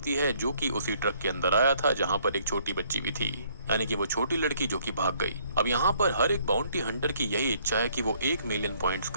है, जो कि उसी ट्रक के अंदर आया था जहाँ पर एक छोटी बच्ची भी थी, यानी कि वो छोटी लड़की जो कि भाग गई। अब यहाँ पर हर एक बाउंटी हंटर की यही इच्छा है कि वो 1 मिलियन पॉइंट्स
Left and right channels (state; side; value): inverted; both; correlation -0.65